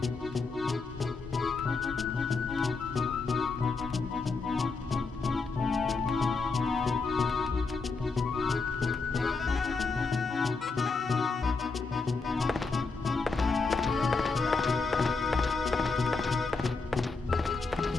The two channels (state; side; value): quieter; right; 4.2 dB